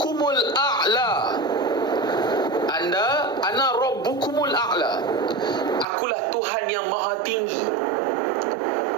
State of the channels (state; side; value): drops out; left; at 5.9 s